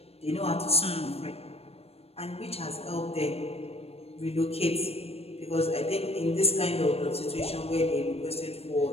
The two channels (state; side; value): late; right; 0.29 ms